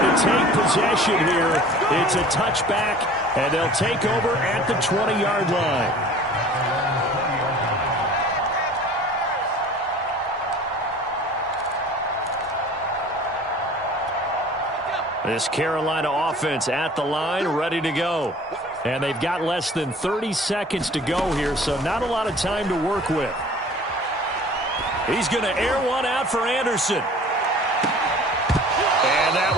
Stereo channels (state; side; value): normal; both; correlation 0.46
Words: to take possession here. It's a touchback, and they'll take over at the 20-yard line. This Carolina offense at the line, ready to go. And they've got less than 30 seconds to go here, so not a lot of time to work with. He's going to air one out for Anderson. And that